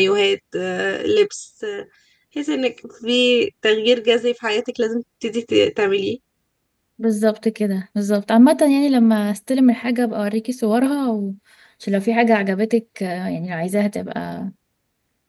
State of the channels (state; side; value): identical; both; correlation 1.00